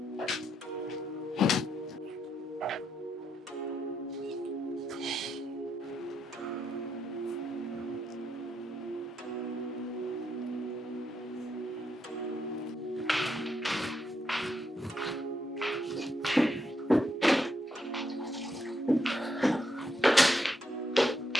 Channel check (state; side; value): normal; both; correlation 0.80